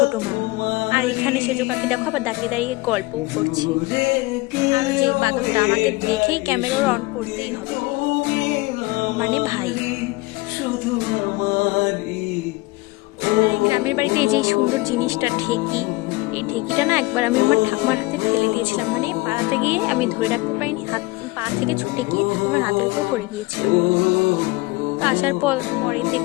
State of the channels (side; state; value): right; quieter; 22.4 dB